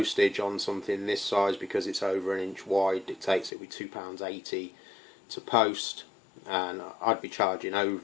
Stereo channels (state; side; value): drops out; right; at 3.5 s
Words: on something this size, because it's over an inch wide. Dictates it with £2.80 to post, and I'd be charging